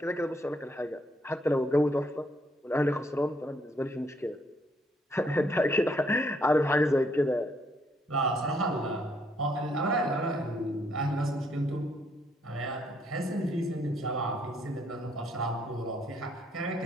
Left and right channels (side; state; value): both; normal; correlation 0.70